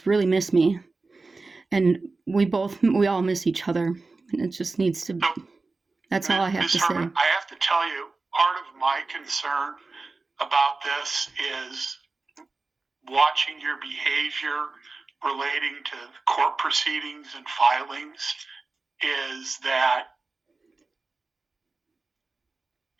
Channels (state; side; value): quieter; left; 3.7 dB